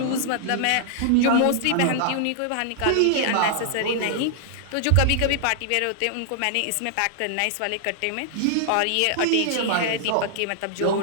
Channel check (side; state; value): both; different; correlation -0.01